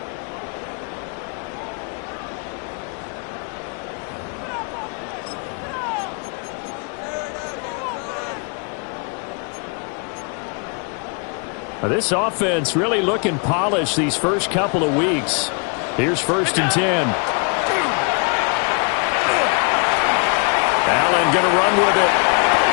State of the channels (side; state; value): right; quieter; 37.1 dB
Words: This offense really looking polished these first couple of weeks. Here's 1st and 10. Allen going to run with it.